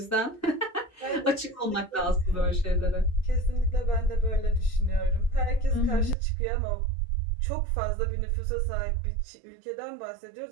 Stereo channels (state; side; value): drops out; left; at 6.2 s